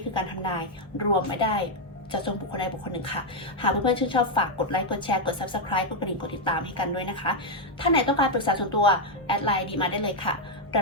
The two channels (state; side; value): normal; both; correlation 0.01